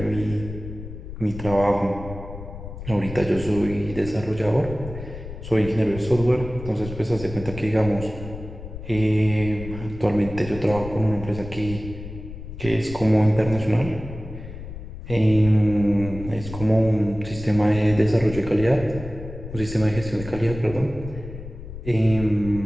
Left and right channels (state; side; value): noise; left; rumble, 11 dB below the sound